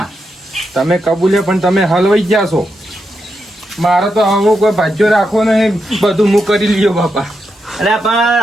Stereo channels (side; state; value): both; normal; correlation 0.85